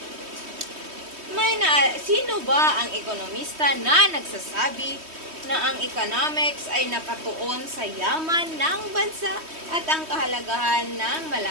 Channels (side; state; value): left; late; 3.2 ms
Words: Sino ba ang ekonomista na nagsasabi na ang economics ay nakatuon sa yaman ng bansa at ang kahalagahan ng